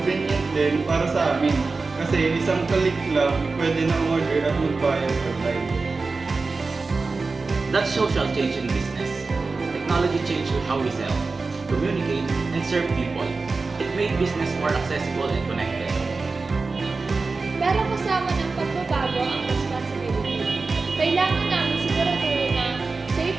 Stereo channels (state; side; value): quieter; left; 4.0 dB